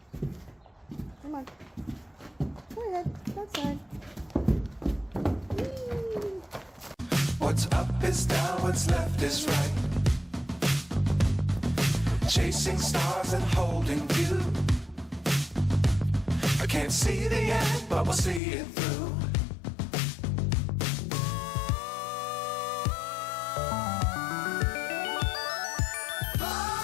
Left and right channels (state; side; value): drops out; right; at 18.4 s